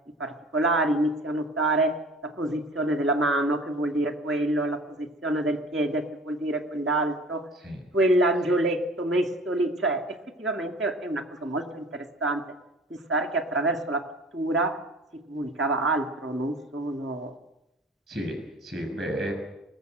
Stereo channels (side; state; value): both; normal; correlation 0.45